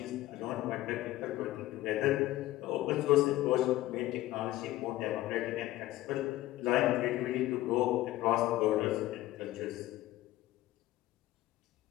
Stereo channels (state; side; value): quieter; right; 16.0 dB